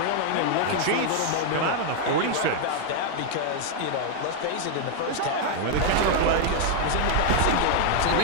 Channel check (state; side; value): different; both; correlation 0.00